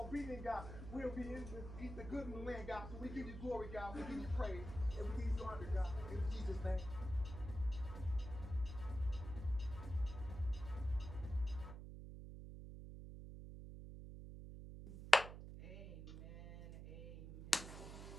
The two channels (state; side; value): noise; right; hum, 10 dB below the sound